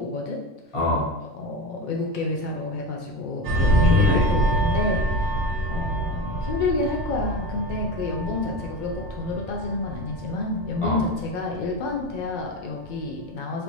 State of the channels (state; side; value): normal; both; correlation 0.23